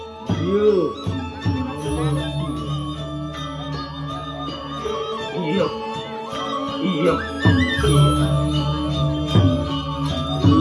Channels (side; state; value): both; identical; correlation 1.00